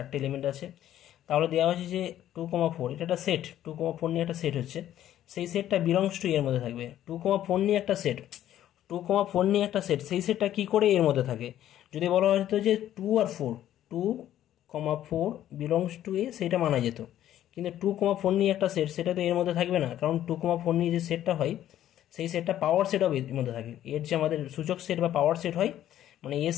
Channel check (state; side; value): quieter; right; 12.1 dB